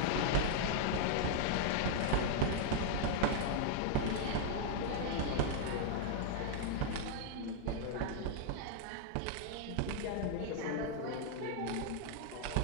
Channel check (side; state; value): both; different; correlation 0.00